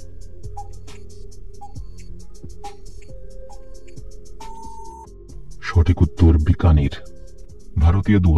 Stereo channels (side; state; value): both; identical; correlation 1.00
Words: সঠিক উত্তর বিকানির। ভারতীয়